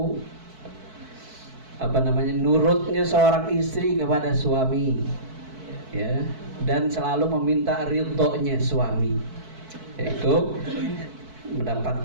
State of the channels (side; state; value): left; late; 4.6 ms